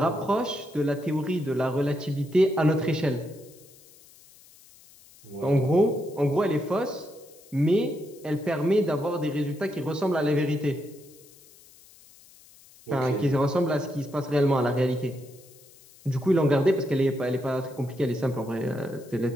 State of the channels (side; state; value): left; noise; hiss, 25 dB below the sound